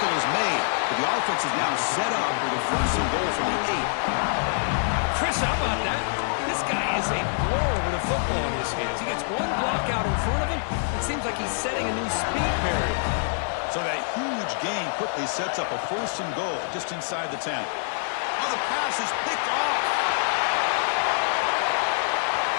is made, but the offense is now set up for the 1st and goal from the 8. Chris, how about that? This guy is a blur with a football in his hands. He gets one block out in front of him. It seems like he's setting a new speed barrier. So that huge gain quickly sets up a 1st and goal just inside the 10. Oh, the pass is picked off.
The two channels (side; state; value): right; silent; digital silence